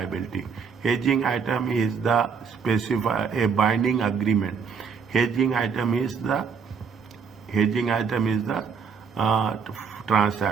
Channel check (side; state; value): left; quieter; 6.0 dB